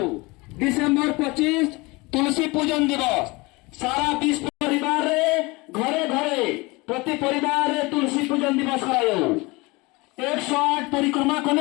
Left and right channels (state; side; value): quieter; right; 24.3 dB